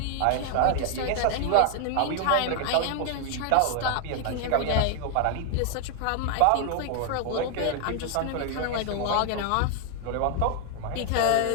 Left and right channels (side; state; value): both; different; correlation 0.00